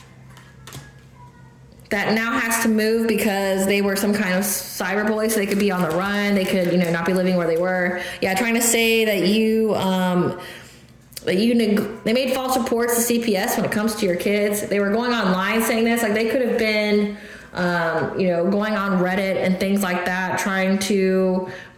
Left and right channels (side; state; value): both; identical; correlation 1.00